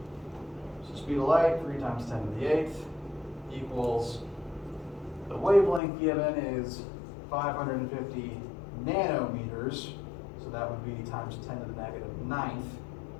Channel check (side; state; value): right; drops out; at 5.8 s